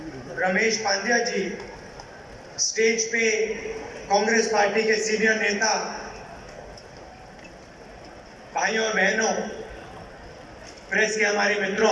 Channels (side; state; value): both; identical; correlation 1.00